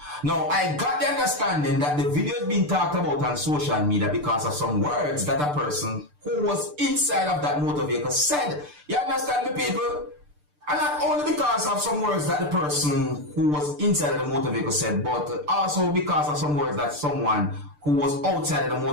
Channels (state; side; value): late; left; 6.8 ms